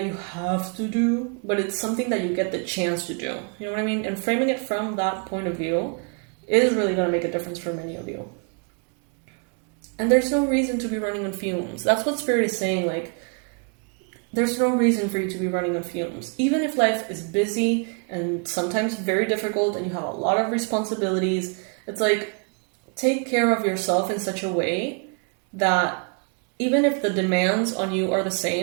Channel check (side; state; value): left; quieter; 38.5 dB